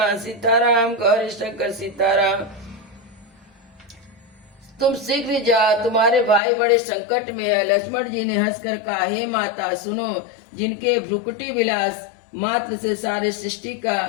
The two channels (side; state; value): right; drops out; at 6.4 s